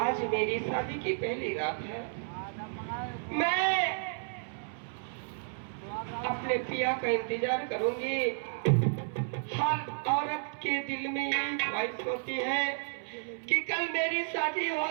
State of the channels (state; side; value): silent; left; 56 dB below the other